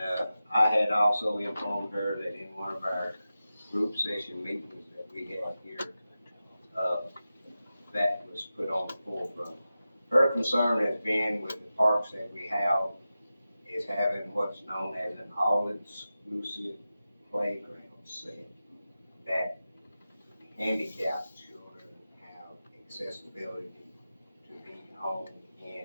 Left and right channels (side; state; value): both; inverted; correlation -0.93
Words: I had also informed her that in one of our group session meetings that we had here, that was put on the forefront. Her concern has been with the parks that we have, is having what's known as an all-inclusive playground set that handicapped children accessibility to be on, in,